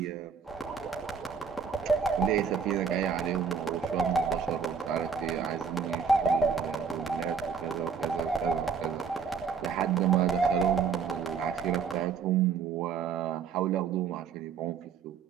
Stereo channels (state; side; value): quieter; left; 6.2 dB